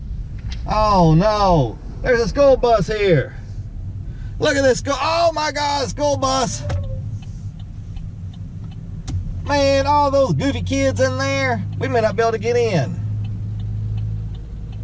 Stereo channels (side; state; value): both; identical; correlation 1.00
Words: Oh no, there's a school bus here. Look at this, oh my God, school bus. Man, all those goofy kids in there, we may not be able to get in.